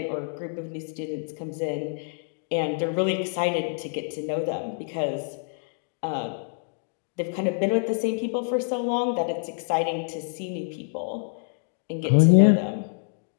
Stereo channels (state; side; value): silent; right; digital silence